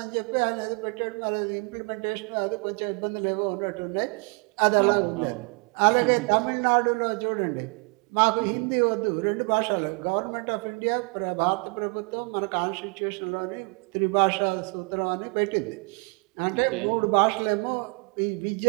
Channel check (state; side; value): quieter; left; 32.1 dB